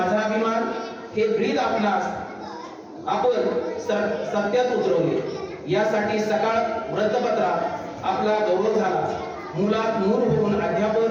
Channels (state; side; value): identical; both; correlation 1.00